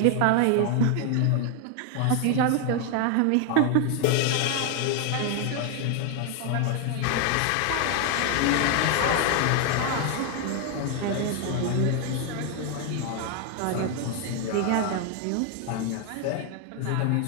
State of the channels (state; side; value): different; both; correlation 0.01